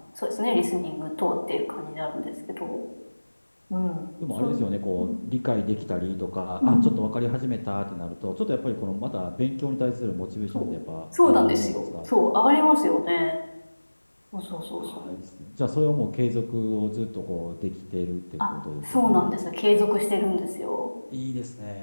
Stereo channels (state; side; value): inverted; both; correlation -1.00